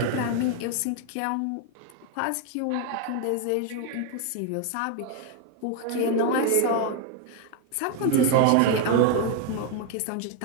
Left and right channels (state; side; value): different; both; correlation 0.01